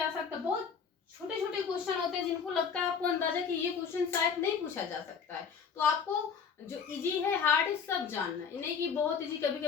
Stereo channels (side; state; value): right; quieter; 6.3 dB